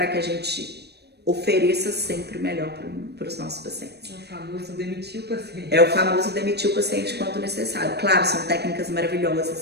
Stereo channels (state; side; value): late; left; 0.48 ms